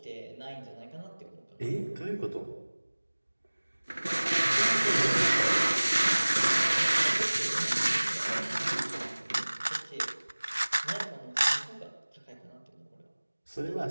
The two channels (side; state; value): both; inverted; correlation -1.00